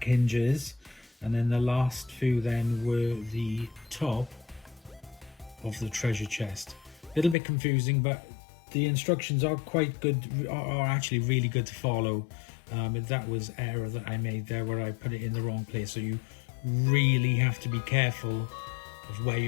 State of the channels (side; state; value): right; drops out; at 7.4 s